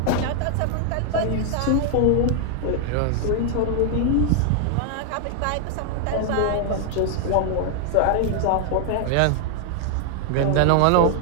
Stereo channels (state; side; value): different; both; correlation 0.00